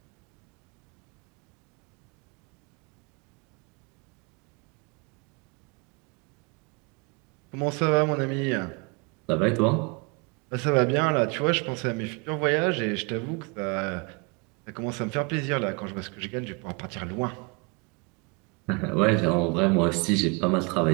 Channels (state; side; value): quieter; left; 30.6 dB